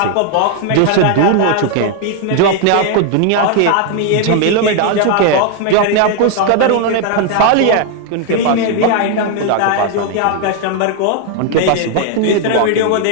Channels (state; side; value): different; both; correlation 0.00